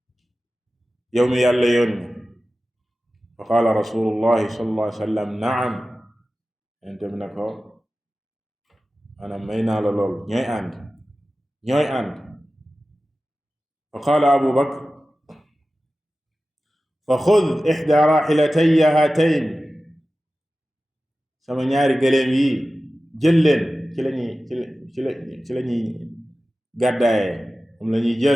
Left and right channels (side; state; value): both; normal; correlation 0.95